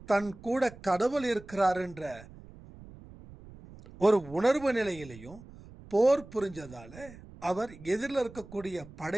தன் கூட கடவுள் இருக்கிறாருன்ற ஒரு உணர்வு நிலையிலையும் போர் புரிஞ்சதால அவர் எதிரில் இருக்கக்கூடிய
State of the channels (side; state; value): right; noise; rumble, 19 dB below the sound